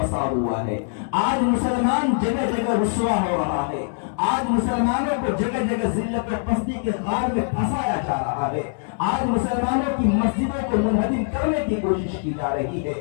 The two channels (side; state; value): right; silent; digital silence